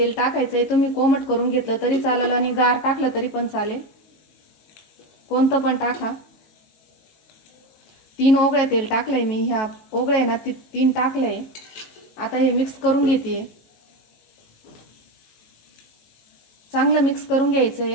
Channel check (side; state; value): right; late; 18 ms